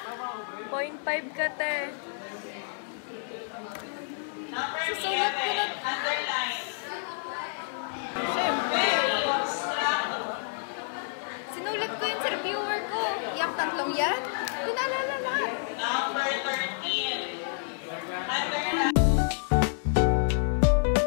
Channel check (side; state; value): right; silent; digital silence